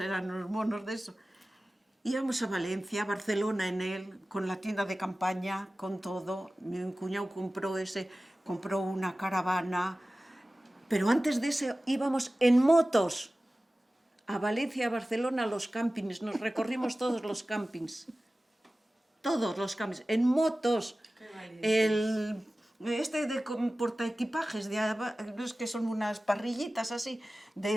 eran unos monos de eso. Íbamos a Valencia, a Barcelona en él, con la tienda de campaña, con todo. Mi cuñado compró una caravana. Pero antes de eso íbamos en motos a Valencia, a Barcelona, a los campings. Nos recorrimos todos los campings. Todos los campings, en motos. De portaequipajes, es que son unas parrillitas así,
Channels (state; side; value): normal; both; correlation 0.96